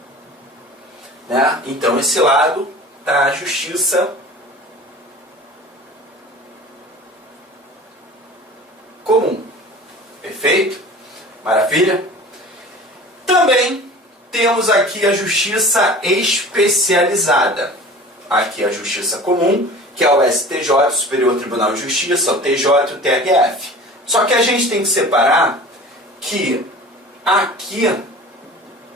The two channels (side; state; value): both; normal; correlation 0.40